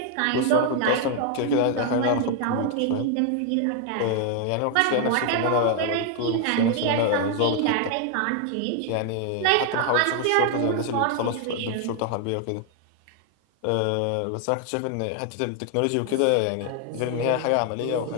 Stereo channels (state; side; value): different; both; correlation 0.00